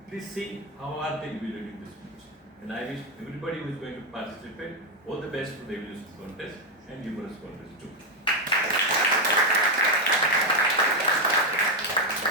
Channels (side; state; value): both; normal; correlation 0.06